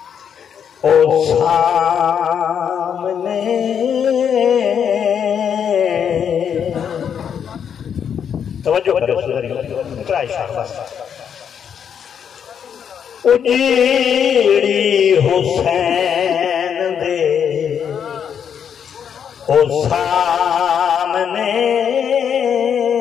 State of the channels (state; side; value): quieter; right; 8.0 dB